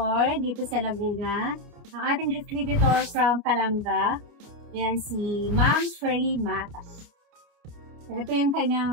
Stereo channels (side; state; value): left; late; 29 ms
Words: dito sa Laguna. Ang ating distributor from Calanga. Yan si Ma'am Shirley Mata. So, ito yung